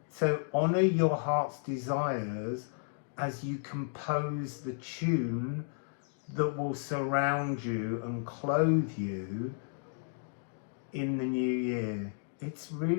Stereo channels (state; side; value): silent; right; digital silence